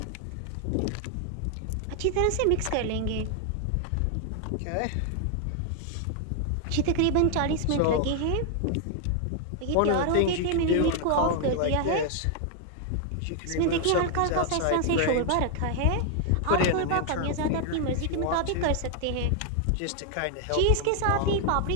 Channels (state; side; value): different; both; correlation 0.00